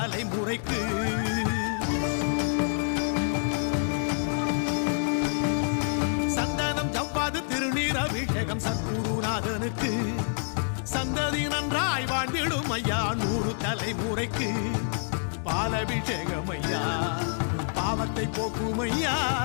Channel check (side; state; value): right; silent; digital silence